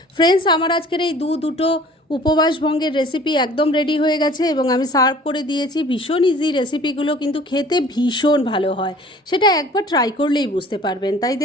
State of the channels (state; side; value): normal; both; correlation 0.50